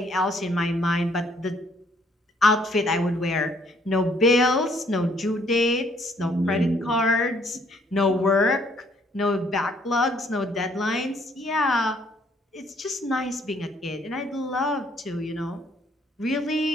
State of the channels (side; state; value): both; normal; correlation 0.65